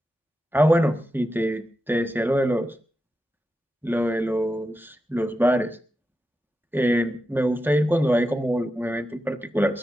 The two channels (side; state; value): both; normal; correlation 0.89